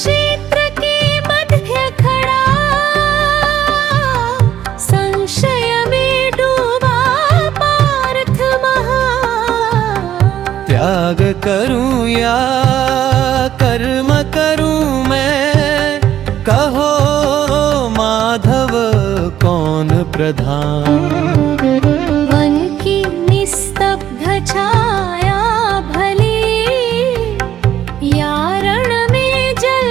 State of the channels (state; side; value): quieter; left; 11.1 dB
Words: के मध्य खड़ा संशय में डूबा पार्थ महा त्याग करूं या कर्म करूं मैं, कहो माधव कौन प्रधान। वन की निस्तब्ध छाया भली या रण में